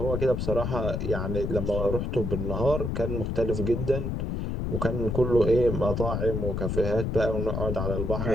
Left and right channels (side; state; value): left; noise; rumble, 1 dB below the sound